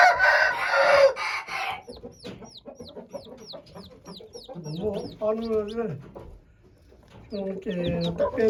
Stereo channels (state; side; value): identical; both; correlation 1.00